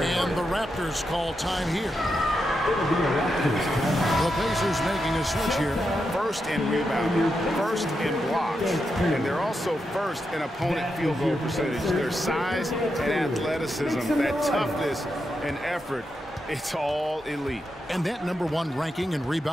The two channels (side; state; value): both; normal; correlation 0.86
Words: And the Raptors call time here. The Pacers making a switch here. First in rebounding, first in blocks, and they're also first in opponent field goal percentage. Their size and athleticism, that toughness and effort, it's all elite. And that #1 ranking in